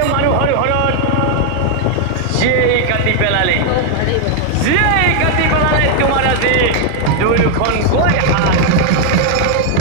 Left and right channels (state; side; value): different; both; correlation 0.00